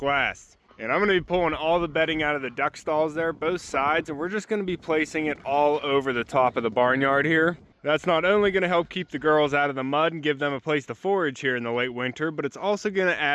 lasts. And I'm going to be pulling all the bedding out of the duck stalls there, both sides, and we're just going to be placing it all over the top of the barnyard here. That's not only going to help keep the girls out of the mud and give them a place to forage here in the late winter, but it's also going to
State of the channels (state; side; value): identical; both; correlation 1.00